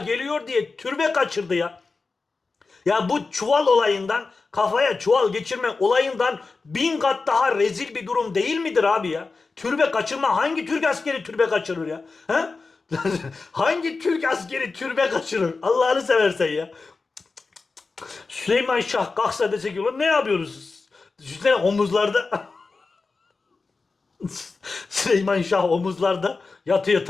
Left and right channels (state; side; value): quieter; right; 4.1 dB